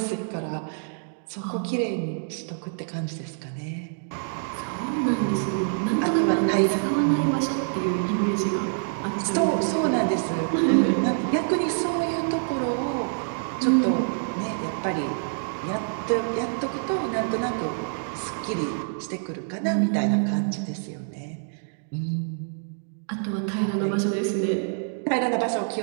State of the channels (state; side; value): silent; left; digital silence